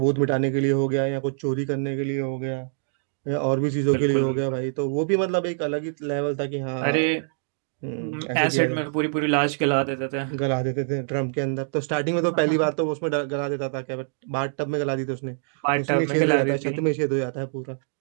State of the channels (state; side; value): silent; left; digital silence